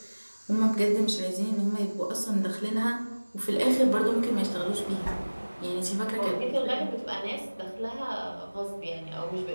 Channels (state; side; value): inverted; both; correlation -1.00